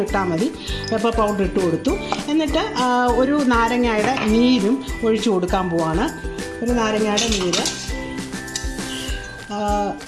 ഇട്ടാൽ മതി. പെപ്പർ പൗഡർ ഇട്ട് കൊടുത്തു. എന്നിട്ട് ഒരു നാരങ്ങയുടെ നീരും ഒഴിച്ചു കൊടുക്കാൻ പോവാണ്. ഒരു നാരങ്ങയുടെ നീര്,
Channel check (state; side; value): identical; both; correlation 1.00